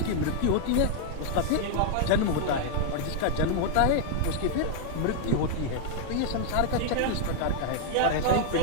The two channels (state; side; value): different; both; correlation -0.01